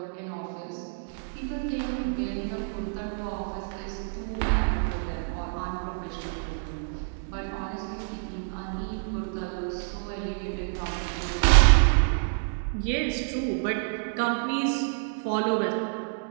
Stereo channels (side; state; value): left; silent; digital silence